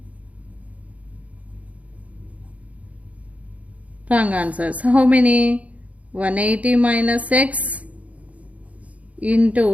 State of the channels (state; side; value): late; left; 0.067 ms